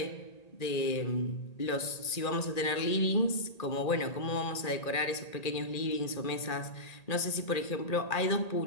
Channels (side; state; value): right; late; 1.8 ms